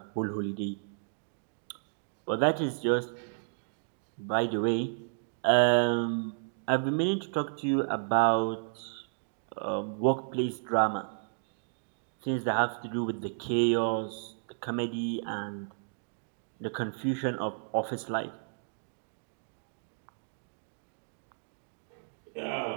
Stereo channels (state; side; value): silent; left; digital silence